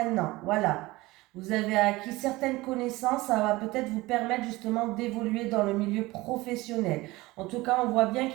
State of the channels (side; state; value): left; quieter; 20.3 dB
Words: Voilà. Vous avez acquis certaines connaissances, ça va peut-être vous permettre justement d'évoluer dans le milieu professionnel. En tout cas, on voit bien